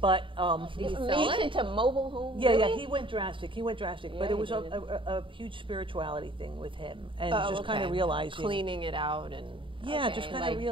But He's sell moved it? into mobile home. yeah, really? he went drastic. But Yeah, it was he a, did. a huge spirituality thing with him, and Oh, just kind of okay. realizing, Cleaning it out and. yeah, okay. just kind like, of I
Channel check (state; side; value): late; left; 0.25 ms